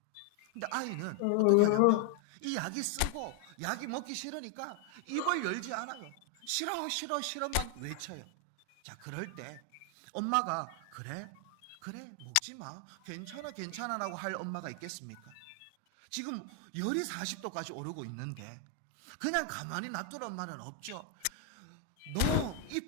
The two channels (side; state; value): both; different; correlation 0.00